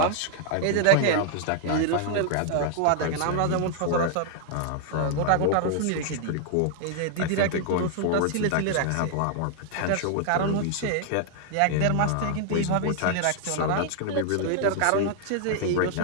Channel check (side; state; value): both; different; correlation 0.00